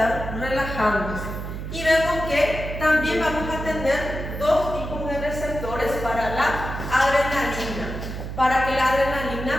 relajándose. Y vemos que también vamos a tener dos tipos de receptores para la adrenalina, para que la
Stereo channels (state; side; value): noise; right; hum, 7 dB below the sound